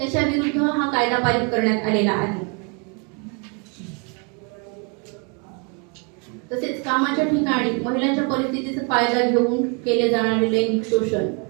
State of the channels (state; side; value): quieter; left; 34.2 dB